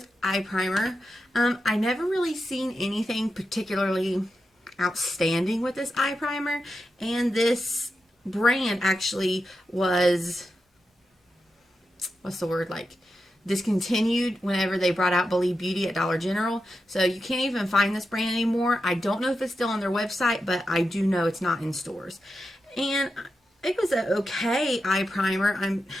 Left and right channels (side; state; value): both; normal; correlation 0.89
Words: eye primer. I never really seen anything particularly outstanding with this eye primer, and this brand actually was, what's the word, like discontinued whenever they brought out Believe Beauty at Dollar General. So you can't even find this brand anymore. I don't know if it's still on their website, but I do know it's not in stores. And it was an okay eye primer. And